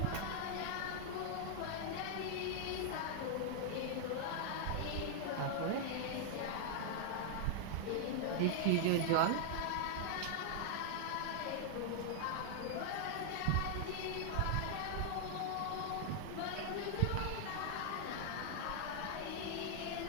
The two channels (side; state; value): both; different; correlation -0.01